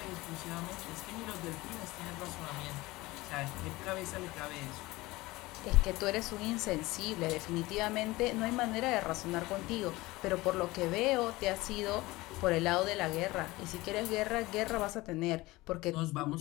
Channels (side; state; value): right; quieter; 20.2 dB